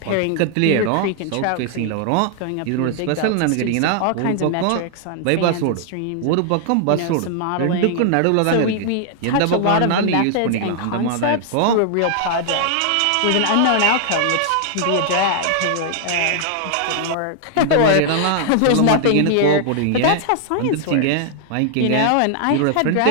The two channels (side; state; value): both; different; correlation 0.00